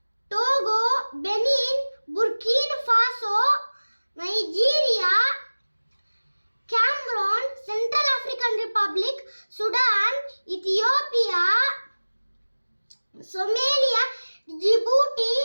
Togo, Benin, Burkina Faso, Nigeria, Cameroon, Central African Republic, Sudan, Ethiopia, Somalia, Djibouti,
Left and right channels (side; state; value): both; inverted; correlation -1.00